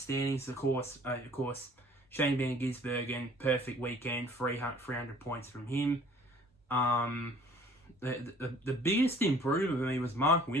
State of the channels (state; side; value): normal; both; correlation 0.54